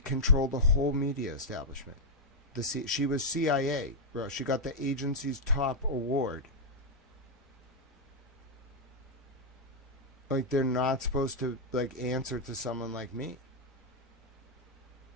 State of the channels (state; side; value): normal; both; correlation -0.04